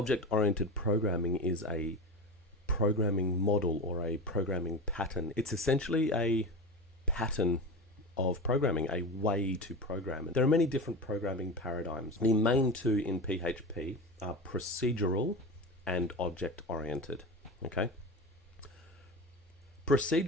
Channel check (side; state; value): both; normal; correlation 0.26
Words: programming is a programming model or a programming pattern. It's essentially a pattern of programming, a way to program. There are many different programming paradigms. The main two in PHP are procedural and object-oriented. Okay.